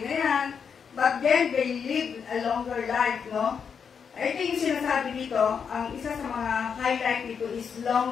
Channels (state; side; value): quieter; right; 6.7 dB